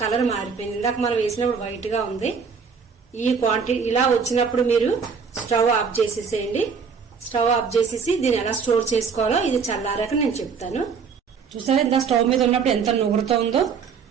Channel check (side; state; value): left; quieter; 5.9 dB